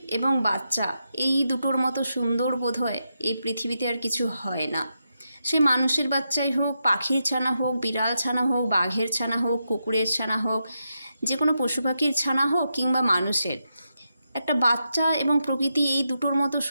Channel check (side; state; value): both; inverted; correlation -0.85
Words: এবং বাচ্চা এই দুটোর মতো সুন্দর বোধহয় এই পৃথিবীতে আর কিছু হয় না। সে মানুষের বাচ্চাই হোক, পাখির ছানা হোক, বিড়াল ছানা হোক, বাঘের ছানা হোক, কুকুরের ছানা হোক, যে কোনো পশু পাখির ছানা হোক কিংবা মানুষের, একটা বাচ্চা এবং প্রকৃতি এই দুটোর মতো